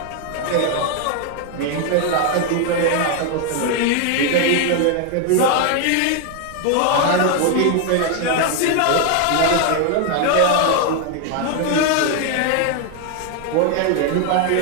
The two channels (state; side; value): different; both; correlation 0.01